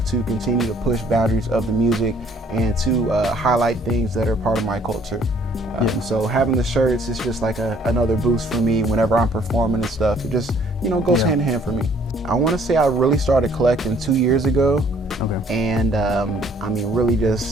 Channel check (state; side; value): normal; both; correlation 0.60